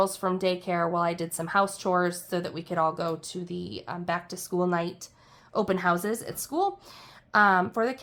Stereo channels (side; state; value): both; identical; correlation 1.00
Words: from daycare while I did some house chores so that we could all go to the back to school night open houses at school for the